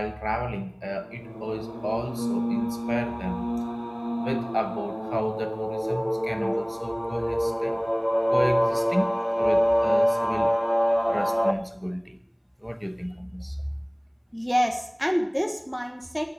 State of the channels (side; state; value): both; identical; correlation 1.00